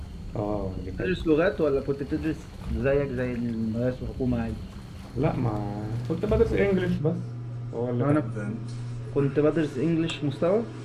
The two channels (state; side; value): identical; both; correlation 1.00